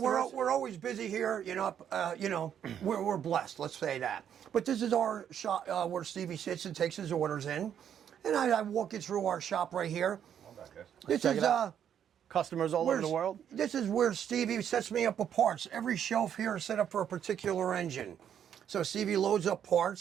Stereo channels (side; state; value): left; quieter; 9.1 dB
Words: We're always busy here. We're blessed. Let's say that. But this is our shop where Stevie sits and takes his orders in, and I walk you through our shop right here. This is customers all over the world. This is where Stevie sets me up with parts. Every shelf here is set up for a particular engine. So Stevie loads up